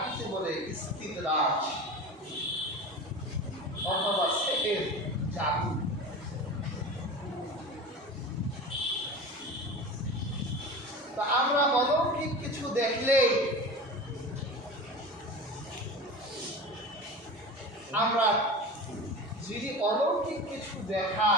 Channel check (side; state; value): both; normal; correlation 0.32